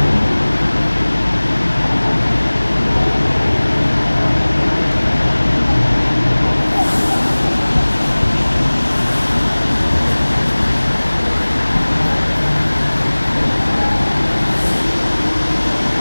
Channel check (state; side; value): inverted; both; correlation -1.00